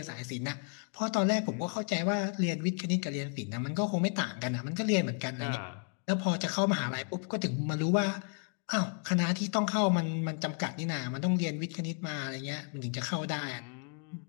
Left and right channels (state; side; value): quieter; right; 38.9 dB